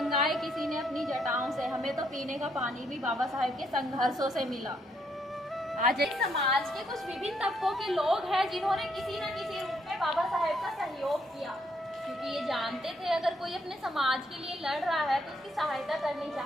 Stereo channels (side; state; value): both; normal; correlation 0.73